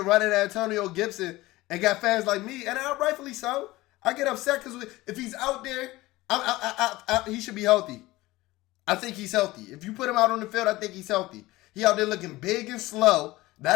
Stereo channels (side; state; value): right; quieter; 19.0 dB